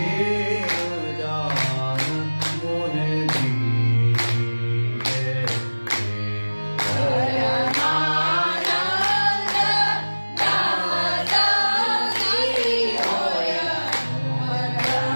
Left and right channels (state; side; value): inverted; both; correlation -1.00